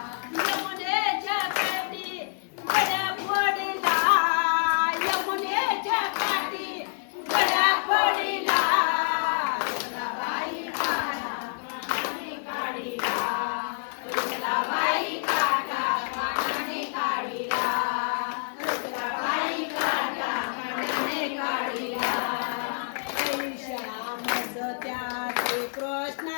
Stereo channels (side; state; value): right; silent; 55 dB below the other